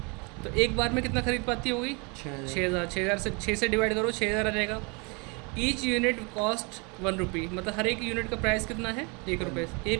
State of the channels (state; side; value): quieter; left; 31.0 dB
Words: तो एक बार में कितना खरीद पाती होगी? 6,000। 6,000 से 6 से डिवाइड करो, 6,000 आ जाएगा। ईच यूनिट कॉस्ट 1 रुपी, मतलब हर एक यूनिट का प्राइस कितना है? 1 रुपये। ए